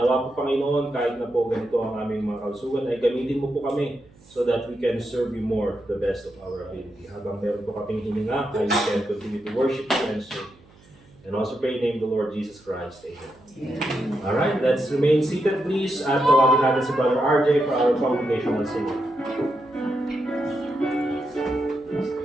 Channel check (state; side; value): noise; right; hum, 27 dB below the sound